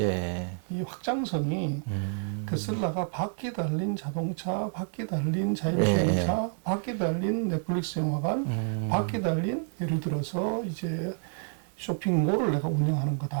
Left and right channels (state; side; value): silent; left; 59 dB below the other